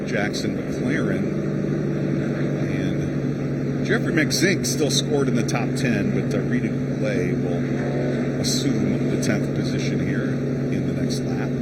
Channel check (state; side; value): noise; left; hum, 23 dB below the sound